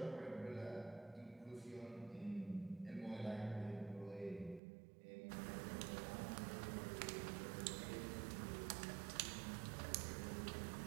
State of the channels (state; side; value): drops out; left; at 4.6 s